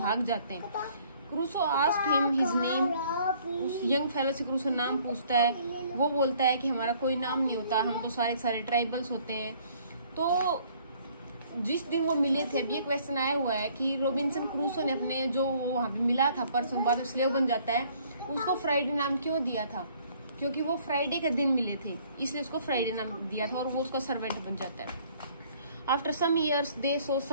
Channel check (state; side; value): inverted; both; correlation -0.59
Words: जाते हैं। Crusoe asked him his name, उस यंग फेलो से क्रूसो नाम पूछता है। वो बोलता है कि हमारा कोई नाम नहीं होता, हम तो सारे ट्राइबल्स होते हैं। तो जिस दिन वो मिले थे, अभी ये क्वेश्चन आया हुआ है कि रॉबिन्सन क्रूसो ने अपने जो वहाँ पे मिला था पर्सन, बाद में स्लेव बन जाता है, उसको फ्राइडे नाम क्यों दिया था, क्योंकि वो फ्राइडे के दिन मिले थे, इसलिए उसको फ्राइडे नाम दिया था, और वो उसका सर्वेंट बन जाता है। After some years they saw